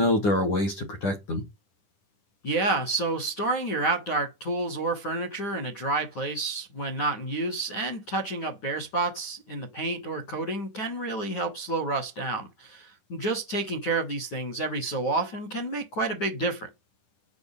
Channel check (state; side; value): late; right; 10 ms